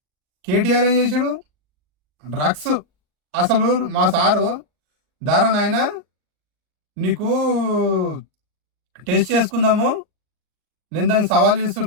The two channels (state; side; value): late; left; 39 ms